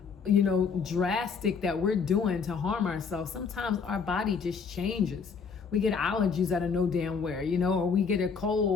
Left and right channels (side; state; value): right; quieter; 5.7 dB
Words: you know, drastic that we're doing to harm ourselves. Sometimes our body just changes. We get allergies out of no damn where, you know, or we get a